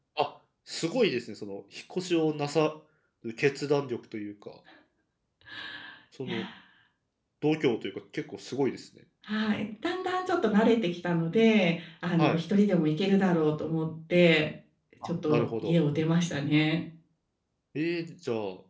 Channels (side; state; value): both; identical; correlation 1.00